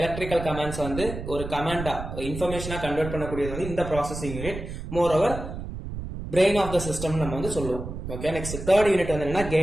கமாண்ட்ஸ் வந்து ஒரு கமாண்டா இன்ஃபர்மேஷனா கன்வெர்ட் பண்ணக்கூடியது வந்து இந்த processing unit. Moreover brain of the system நம்ம வந்து சொல்லுவோம். ஓகே, நெக்ஸ்ட் தேர்ட் யூனிட் வந்து என்னன்னா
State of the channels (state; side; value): noise; right; rumble, 8 dB below the sound